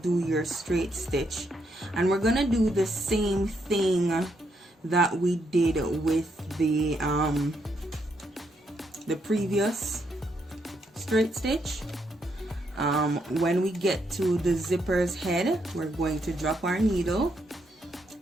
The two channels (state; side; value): normal; both; correlation 0.77